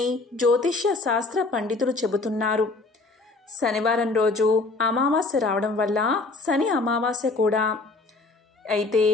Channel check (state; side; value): quieter; right; 3.6 dB